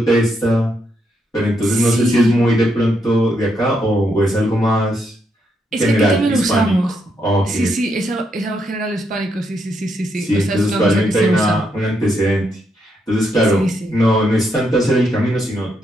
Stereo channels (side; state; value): both; normal; correlation 0.78